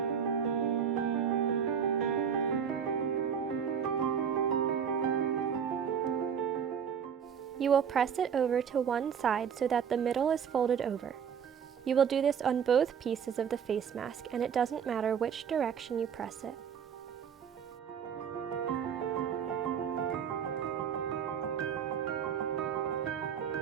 You will press it over to one side so that the middle is folded over. You will do this on both pieces of the face mask, and it doesn't matter which direction you press it.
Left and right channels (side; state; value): left; quieter; 7.6 dB